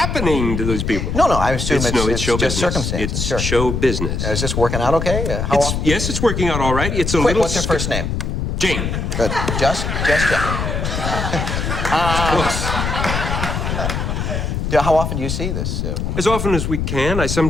to those people? No, I assume it's show just business. circumstances. It's show business. Is this working out okay? How often? Yes, it's working out all right. It's a little. What's her first name? Jane. Good. Just Jane. Close. How often do you see this woman? As often as we can. I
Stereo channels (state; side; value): noise; left; rumble, 2 dB below the sound